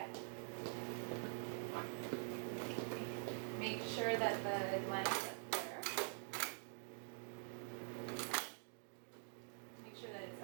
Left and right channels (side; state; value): left; silent; digital silence